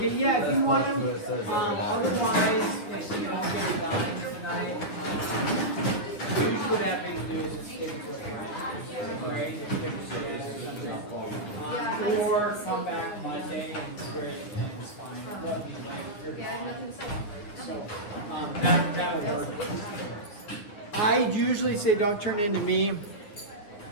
yeah, if you want to, otherwise, if you don't get it done tonight, usually what I have to do is just take a quick break, or come back Monday and swear it and it's fine. So, that'll work. I usually say don't turn into me,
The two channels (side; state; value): right; late; 9.5 ms